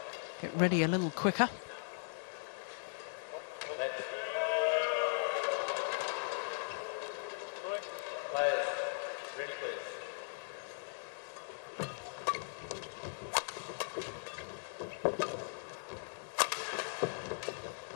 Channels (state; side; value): silent; right; digital silence